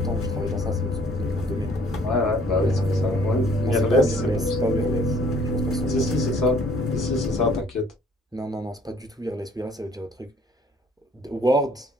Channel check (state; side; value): normal; both; correlation 0.59